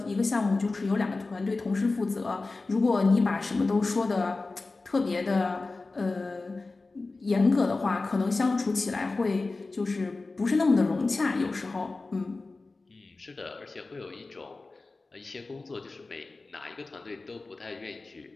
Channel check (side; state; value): right; quieter; 3.5 dB